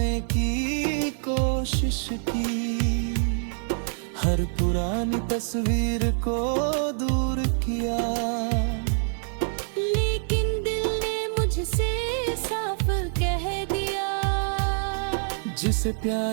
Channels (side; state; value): left; silent; digital silence